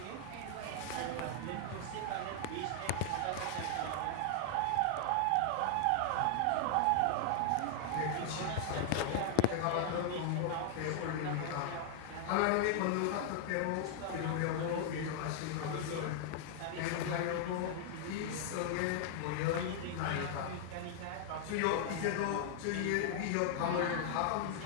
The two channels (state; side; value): different; both; correlation 0.00